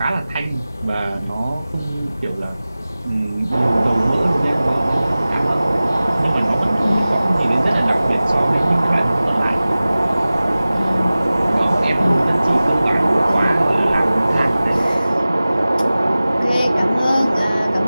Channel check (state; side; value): inverted; both; correlation -0.97